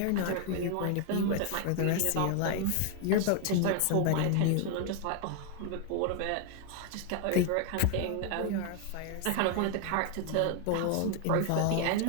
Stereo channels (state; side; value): different; both; correlation 0.00